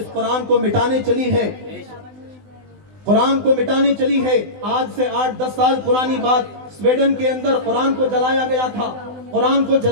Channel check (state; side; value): late; left; 20 ms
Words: قرآن کو مٹانے چلی ہے، قرآن کو مٹانے چلی ہے۔ آج سے 8-10 سال پرانی بات، سویڈن کے اندر قرآن کو جلایا گیا تھا۔ قرآن کو